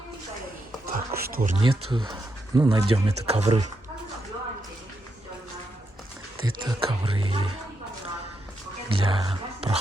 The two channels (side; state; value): both; normal; correlation 0.83